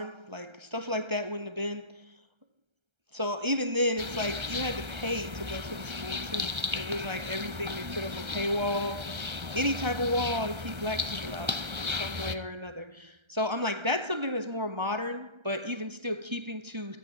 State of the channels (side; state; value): left; late; 1.3 ms